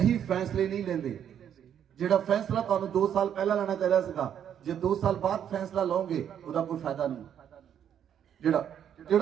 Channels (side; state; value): left; quieter; 9.2 dB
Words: फैसले नहीं लेंदे। जिहड़ा फैसला तुहानूं 2 साल पहला लेना चाहिदा सीगा, जे 2 साल बाद फैसला लओगे उसका कोई फायदा नहीं।